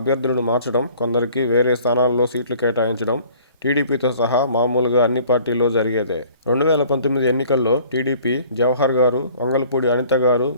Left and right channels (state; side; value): inverted; both; correlation -0.53